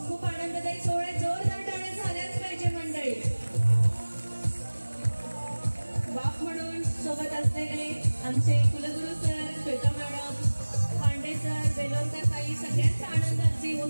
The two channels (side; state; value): both; inverted; correlation -1.00